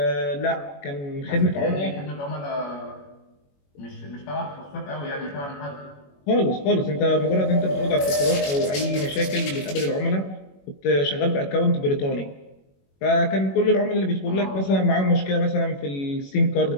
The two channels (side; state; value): right; late; 21 ms